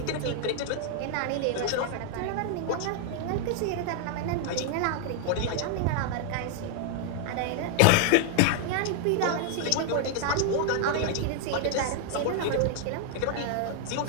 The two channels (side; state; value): both; different; correlation 0.00